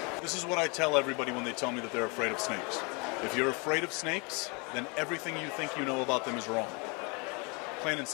This is what I tell everybody when they tell me that they're afraid of snakes. If you're afraid of snakes, then everything you think you know about them is wrong. Plain and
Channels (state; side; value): quieter; right; 31.3 dB